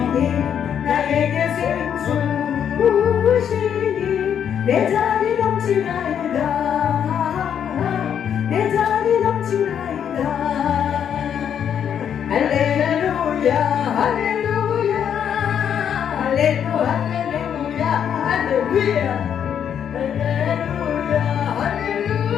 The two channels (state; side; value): quieter; right; 8.6 dB